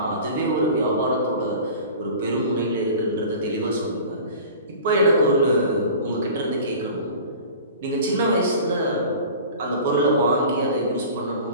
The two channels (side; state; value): both; inverted; correlation -0.40